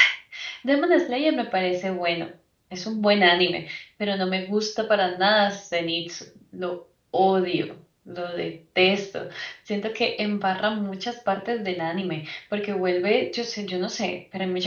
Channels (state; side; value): identical; both; correlation 1.00